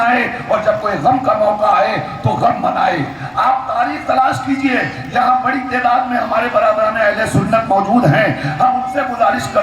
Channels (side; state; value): both; identical; correlation 1.00